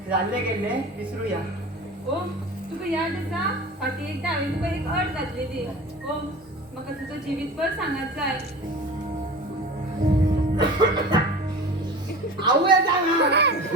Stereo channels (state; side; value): normal; both; correlation 0.36